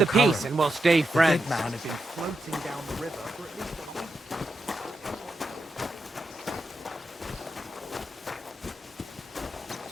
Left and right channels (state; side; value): normal; both; correlation 0.86